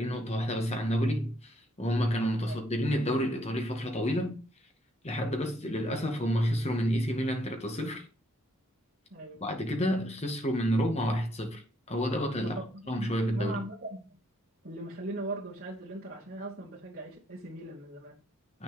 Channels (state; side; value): normal; both; correlation 0.72